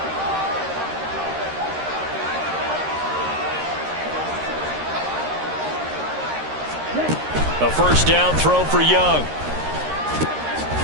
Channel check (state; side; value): late; left; 13 ms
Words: A 1st down throw for Young.